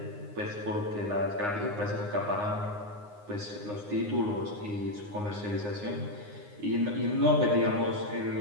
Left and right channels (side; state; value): left; late; 9.7 ms